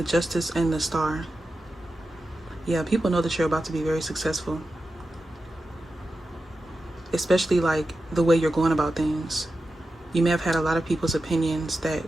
Justice, and the Star. Yeah, people know that you're about to be very successful, especially like the way you're going about things. You may have had a lot of people's opinions that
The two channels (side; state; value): both; normal; correlation 0.91